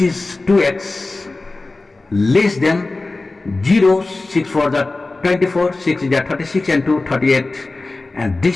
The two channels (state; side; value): quieter; right; 3.3 dB